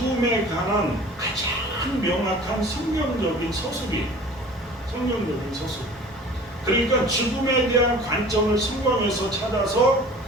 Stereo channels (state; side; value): normal; both; correlation 0.44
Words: 관한 가장 명확한 성경적인 서술이에요. 성경적인 서술. 그러니까 죽음에 대한 관점을 성경에서 찾아서